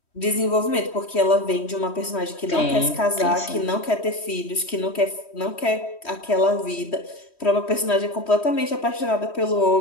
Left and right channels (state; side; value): late; right; 3.1 ms